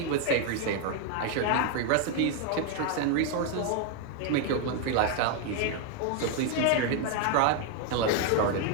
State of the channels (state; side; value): different; both; correlation 0.01